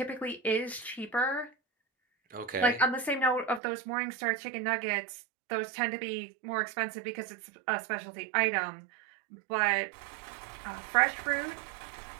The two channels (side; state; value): left; drops out; at 3.6 s